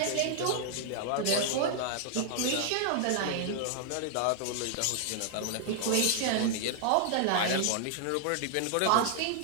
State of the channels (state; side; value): different; both; correlation 0.00